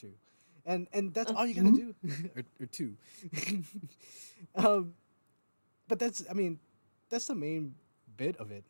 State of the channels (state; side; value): inverted; both; correlation -1.00